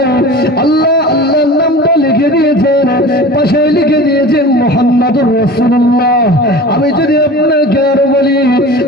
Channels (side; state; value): both; normal; correlation 0.37